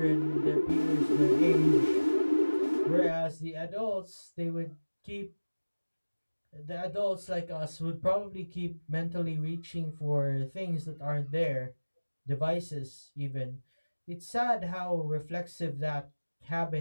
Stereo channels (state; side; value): inverted; both; correlation -1.00